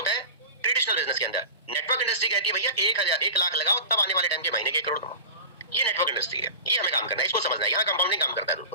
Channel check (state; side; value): inverted; both; correlation -0.32